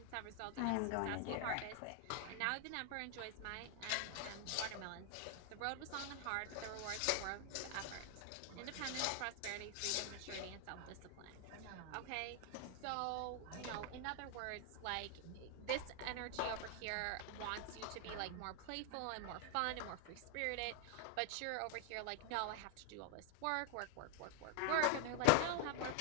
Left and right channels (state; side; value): different; both; correlation 0.00